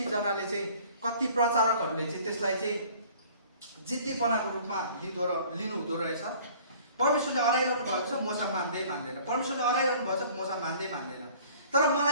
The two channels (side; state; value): both; inverted; correlation -0.52